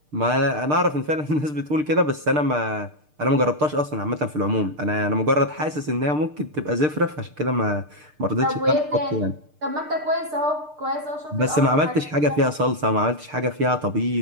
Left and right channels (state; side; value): late; left; 6.6 ms